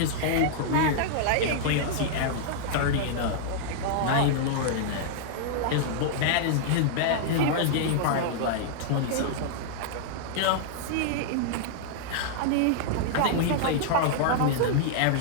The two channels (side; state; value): both; different; correlation -0.01